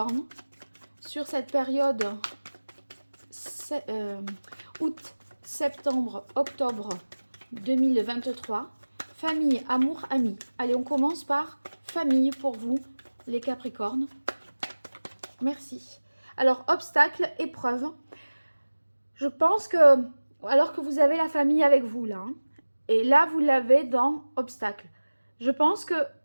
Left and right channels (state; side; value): inverted; both; correlation -1.00